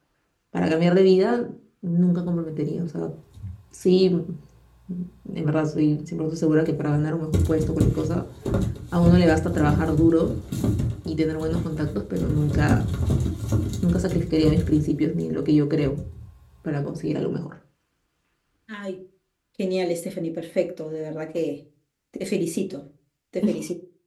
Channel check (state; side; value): identical; both; correlation 1.00